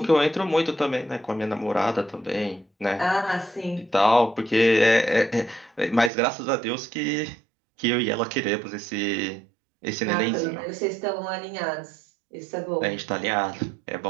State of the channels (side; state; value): left; drops out; at 6.1 s